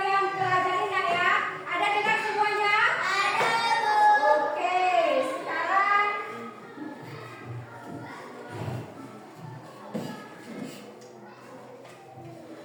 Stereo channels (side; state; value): both; identical; correlation 1.00